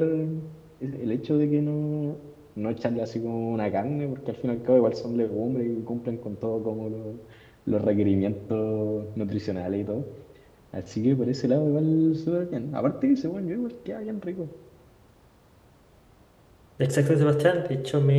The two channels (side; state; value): both; identical; correlation 1.00